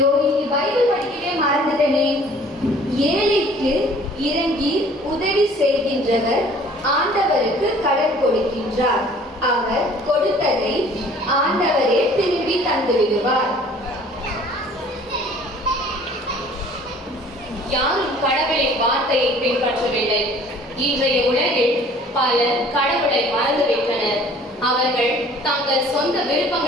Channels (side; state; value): both; normal; correlation 0.52